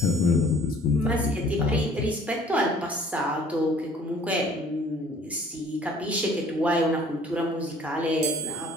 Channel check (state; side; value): normal; both; correlation 0.54